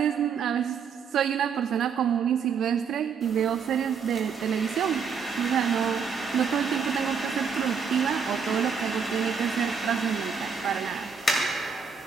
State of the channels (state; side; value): quieter; left; 6.3 dB